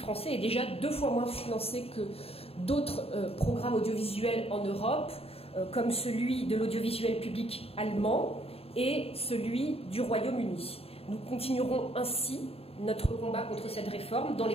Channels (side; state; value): right; late; 0.28 ms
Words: est déjà 2 fois moins financé que d'autres programmes audiovisuels en Europe, comme celui de l'audiovisuel public allemand et celui du Royaume-Uni. Nous continuerons ainsi notre combat contre cette réforme dans les